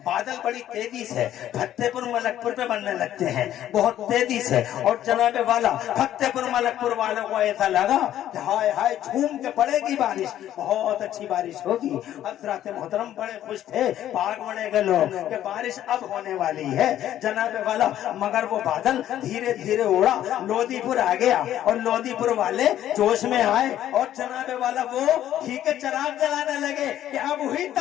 بادل بڑی تیزی سے فتح پور ملک پور پہ بننے لگتے ہیں, بہت تیزی سے. اور جناب والا فتح پور ملک پور والوں کو ایسا لگا کہ ہائے ہائے جھوم کے پڑے گی بارش, بہت اچھی بارش ہوگی. حضرات محترم بڑے خوش تھے, باغ بڑے گئے لوگ کہ بارش اب ہونے والی ہے جناب والا. مگر وہ بادل دھیرے دھیرے اڑا, لودھی پور آ گیا اور لودھی پور والے جوش میں آئے اور جناب والا وہ گھی کے چراغ جلانے لگے کہ اب ہوئی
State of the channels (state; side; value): quieter; right; 11.9 dB